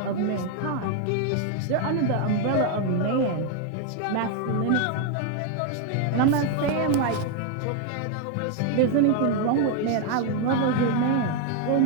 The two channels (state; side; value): different; both; correlation 0.01